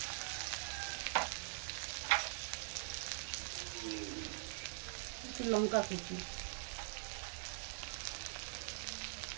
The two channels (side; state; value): left; silent; digital silence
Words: একটু লঙ্কা কুচি,